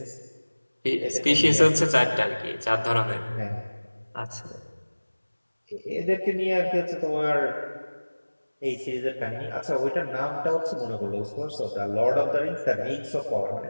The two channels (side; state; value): both; inverted; correlation -1.00